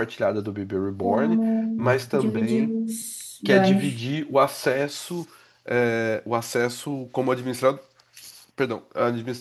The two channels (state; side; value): identical; both; correlation 1.00